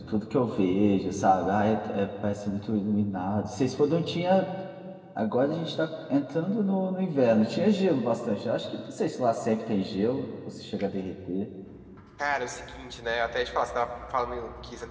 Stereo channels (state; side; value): identical; both; correlation 1.00